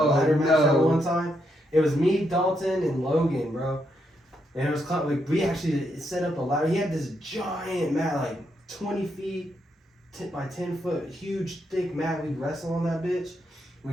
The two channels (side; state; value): both; normal; correlation 0.79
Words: ladder match that no. one time. It was me, Dalton, and Logan, bro. And it was like we actually set up a ladder. He had this giant mat, like 20 feet by 10 foot, huge thick mat. We'd wrestle on that bitch. We